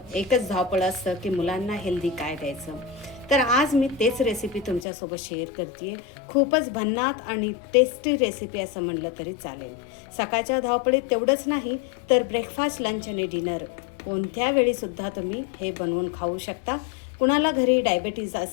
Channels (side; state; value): right; drops out; at 4.9 s